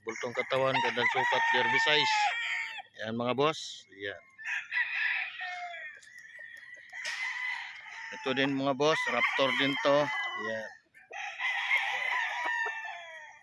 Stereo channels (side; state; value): both; identical; correlation 1.00